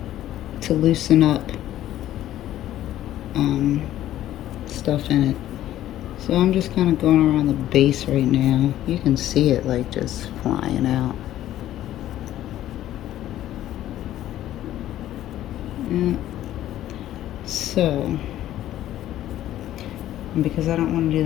to loosen up stuff in it. So I'm just kind of going around the base right now. You can see it like just flying out. Yeah. So, because I don't want to do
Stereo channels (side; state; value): right; quieter; 13.0 dB